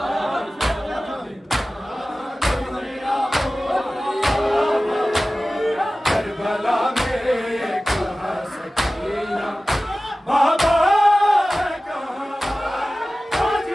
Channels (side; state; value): both; normal; correlation 0.96